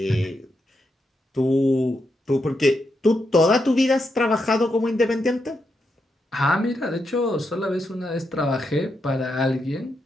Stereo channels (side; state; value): both; normal; correlation 0.83